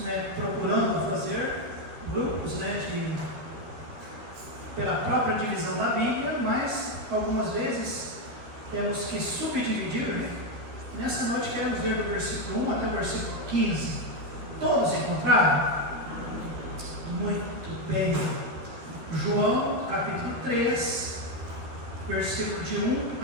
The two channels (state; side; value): late; left; 13 ms